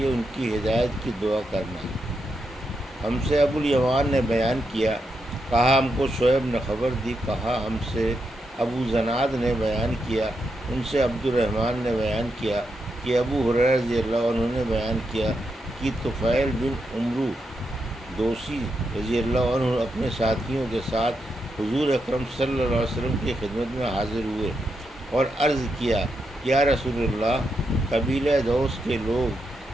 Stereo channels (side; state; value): both; normal; correlation 0.84